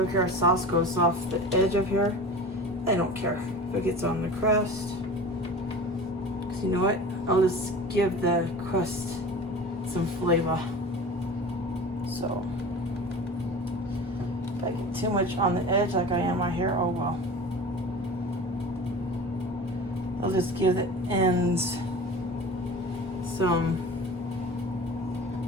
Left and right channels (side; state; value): both; normal; correlation 0.36